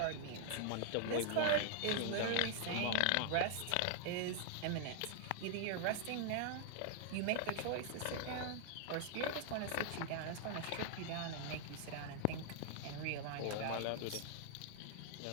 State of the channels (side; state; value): both; different; correlation 0.00